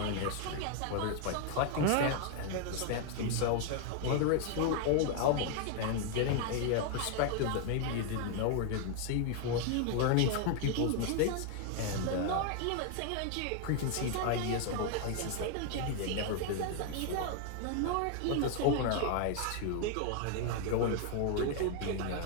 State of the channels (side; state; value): both; different; correlation 0.00